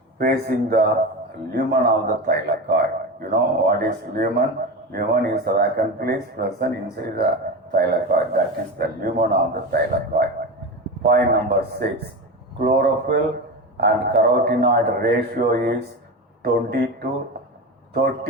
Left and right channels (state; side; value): normal; both; correlation 0.23